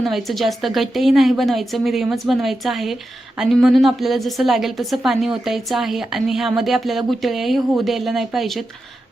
जास्त घट्टही नाही बनवायचं, मिडियमच बनवायचं आहे आणि म्हणून आपल्याला जसं लागेल तसं पाणी ओतायचं आहे आणि ह्यामध्ये आपल्याला गुठळ्याही होऊ द्यायला नाही पाहिजेत.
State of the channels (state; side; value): normal; both; correlation 0.90